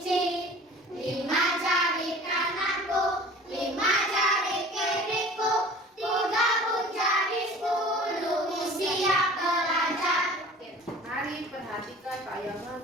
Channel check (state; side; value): normal; both; correlation 0.44